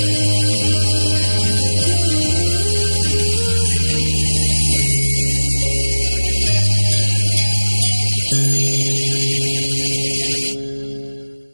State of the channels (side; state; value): both; inverted; correlation -1.00